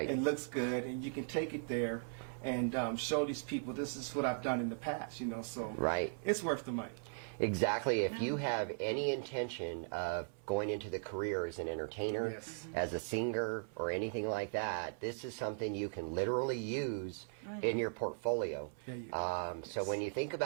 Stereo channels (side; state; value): left; silent; 52 dB below the other